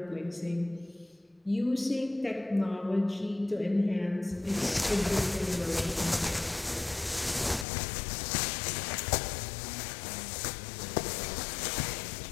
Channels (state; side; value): drops out; right; at 7.7 s